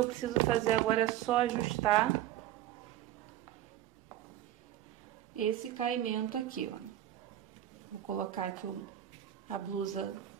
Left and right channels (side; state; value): left; quieter; 12.5 dB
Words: preciso fazer agora é só ajustar esse caimento aqui, ó. Vou colocar aqui a blusa